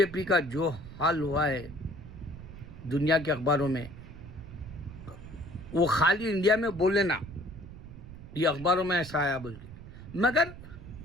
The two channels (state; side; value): noise; right; rumble, 14 dB below the sound